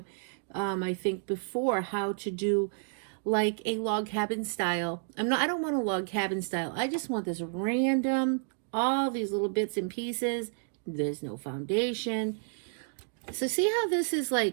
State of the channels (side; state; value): left; silent; digital silence